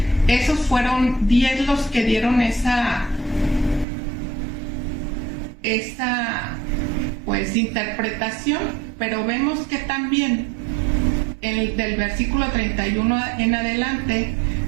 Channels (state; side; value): drops out; left; at 3.9 s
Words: esos fueron 10 los que dieron esa pues interpretación, pero vemos que también del versículo 31 en adelante